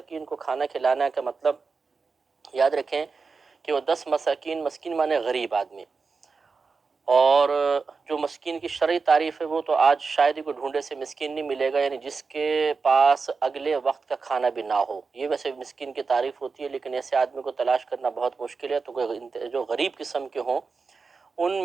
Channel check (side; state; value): left; quieter; 4.6 dB